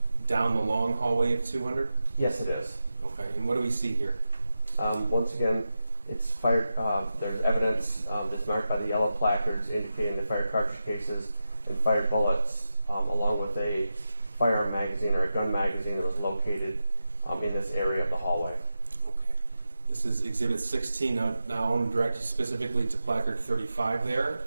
down the long hallway of 200? Yes, it is. Okay, and what do we see here? Once again, it's fired. There's evidence that's marked by the yellow placards indicating the fired cartridge cases and fired bullets, along with a firearm magazine or a gun magazine that was located in this area of the hallway. Okay. This is Exhibit 16. Now I want to direct you specifically to placard 35 there,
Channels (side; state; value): both; inverted; correlation -0.90